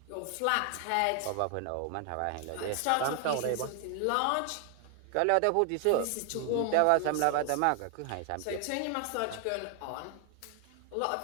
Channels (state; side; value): different; both; correlation 0.00